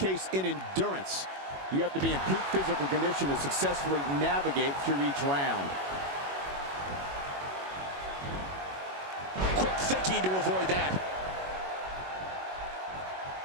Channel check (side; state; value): left; late; 21 ms